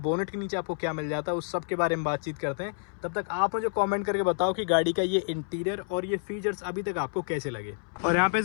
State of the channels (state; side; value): silent; right; 59 dB below the other